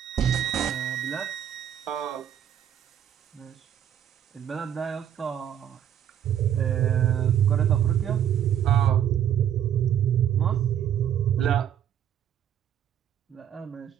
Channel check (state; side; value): quieter; left; 9.8 dB